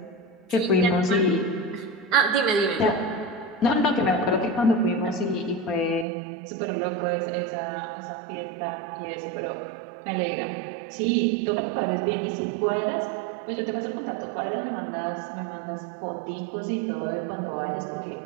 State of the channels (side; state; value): left; drops out; at 6.1 s